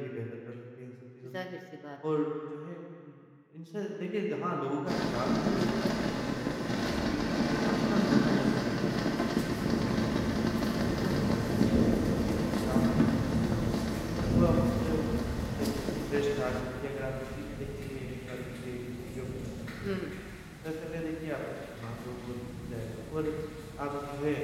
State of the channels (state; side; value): identical; both; correlation 1.00